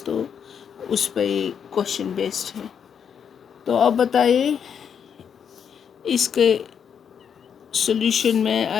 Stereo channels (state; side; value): quieter; right; 7.6 dB